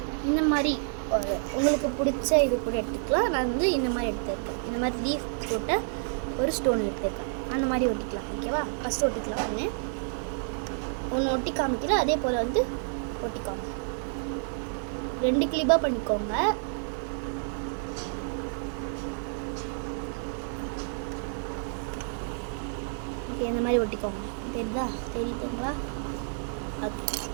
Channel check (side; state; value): left; silent; digital silence